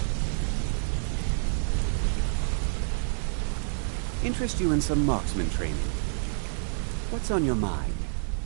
Interest you in some marksman training. What's on your mind?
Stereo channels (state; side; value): silent; left; digital silence